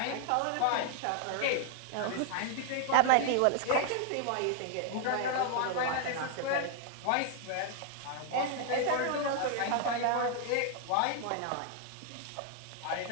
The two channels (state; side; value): different; both; correlation 0.00